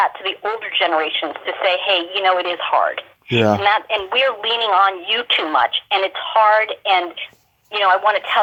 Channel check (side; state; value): both; identical; correlation 1.00